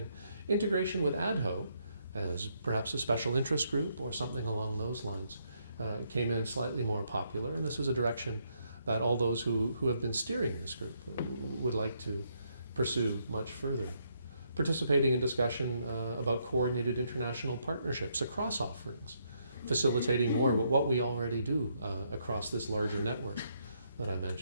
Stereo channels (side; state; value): both; inverted; correlation -0.75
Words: Integration with ADHO as perhaps a special interest group or something along those lines came in slightly more popular, and this is a direction that all those who have been steering this group would like to pursue much further. Participating in discussion about coordinated international partnerships across offerings, facilitating more what we already do across this larger network that I